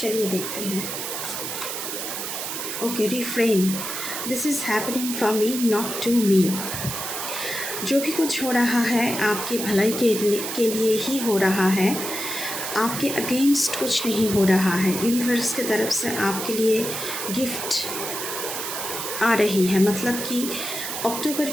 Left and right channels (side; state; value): right; noise; hiss, 5 dB below the sound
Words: देखते हैं। Okay, refrain, this is happening for me, not to me. जो भी कुछ हो रहा है आपकी भलाई के लिए ही हो रहा है, आपके अगेंस्ट कुछ नहीं हो रहा है। यूनिवर्स की तरफ से आपके लिए गिफ्ट आ रही है, मतलब कि अक्टूबर